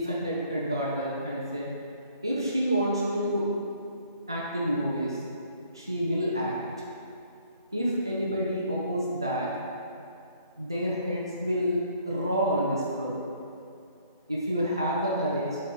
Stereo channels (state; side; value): inverted; both; correlation -0.61